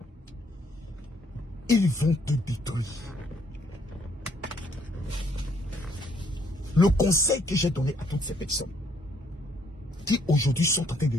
Ils vont te détruire. Le conseil que j'ai donné à toutes ces personnes qui aujourd'hui sont en train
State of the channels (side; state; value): both; normal; correlation 0.67